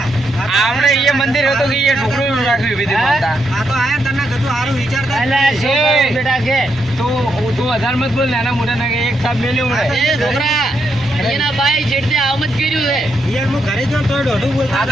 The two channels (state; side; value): normal; both; correlation 0.80